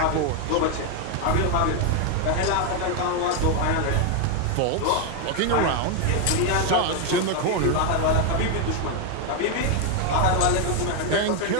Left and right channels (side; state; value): both; different; correlation 0.01